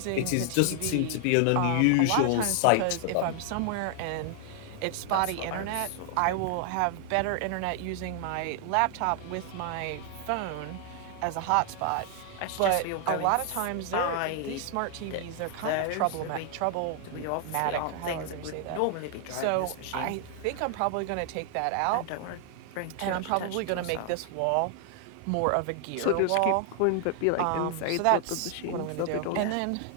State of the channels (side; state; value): both; different; correlation 0.00